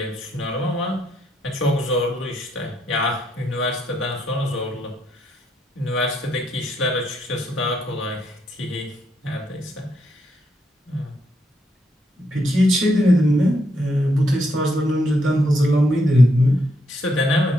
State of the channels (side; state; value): both; normal; correlation 0.76